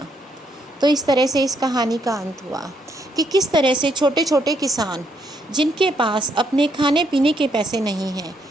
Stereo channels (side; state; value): both; normal; correlation 0.74